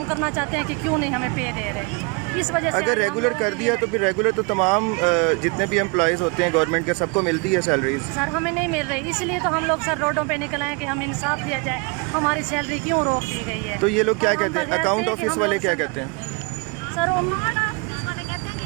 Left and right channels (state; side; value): quieter; left; 31.7 dB